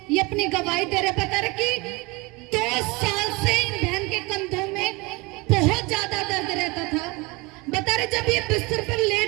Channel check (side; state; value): left; quieter; 25.3 dB